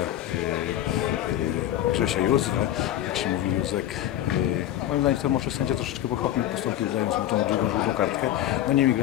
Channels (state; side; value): quieter; right; 12.5 dB